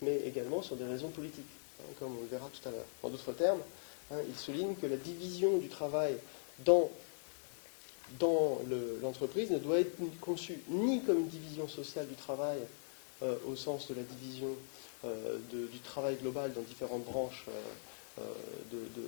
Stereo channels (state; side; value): silent; right; digital silence